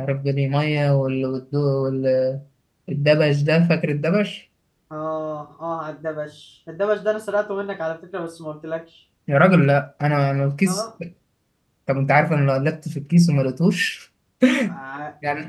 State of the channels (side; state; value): both; identical; correlation 1.00